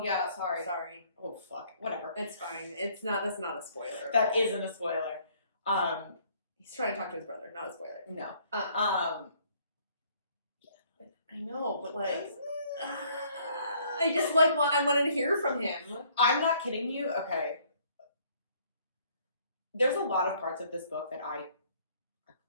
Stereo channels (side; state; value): both; inverted; correlation -0.62